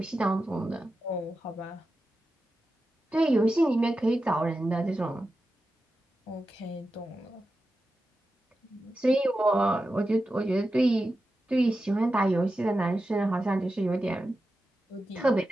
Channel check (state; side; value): normal; both; correlation 0.91